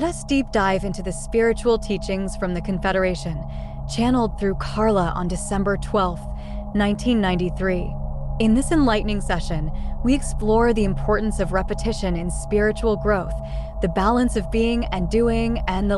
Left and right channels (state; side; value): identical; both; correlation 1.00